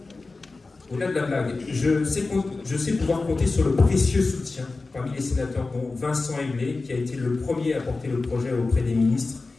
Au-delà de la blague, je sais pouvoir compter sur le précieux soutien parmi les sénateurs, dont Vincent Eblé, qui a été le premier à porter le projet auprès des ministres,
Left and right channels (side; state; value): right; quieter; 3.7 dB